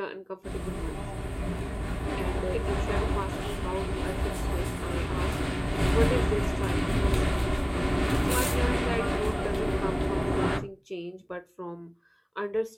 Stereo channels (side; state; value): both; identical; correlation 1.00